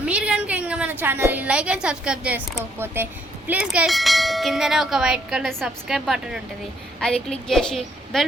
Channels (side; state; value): both; normal; correlation 0.69